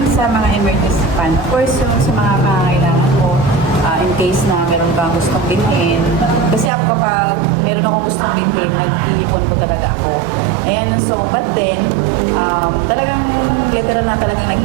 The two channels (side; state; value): left; drops out; at 6.7 s